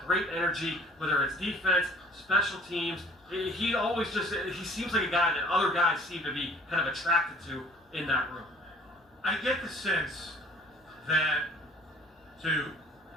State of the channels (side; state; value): both; normal; correlation 0.52